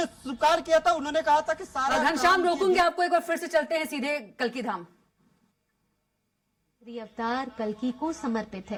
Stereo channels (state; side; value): identical; both; correlation 1.00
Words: स्वीकार किया था, उन्होंने कहा था कि सारा घनश्याम रोकूंगे आपको एक बार, फिर से चलते हैं सीधे कल्की धाम। अवतार कल्की को समर्पित